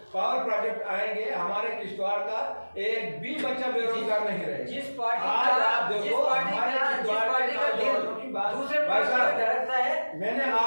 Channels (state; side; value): inverted; both; correlation -1.00